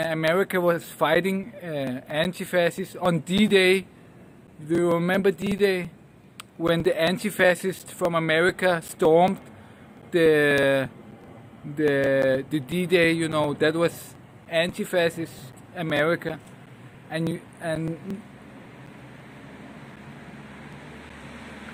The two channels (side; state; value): both; identical; correlation 1.00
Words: was fighting anti-fascists on D-Day. Do you remember D-Day? When the anti-fascists from America stormed the D-Day, you know, that was anti-fascist America. And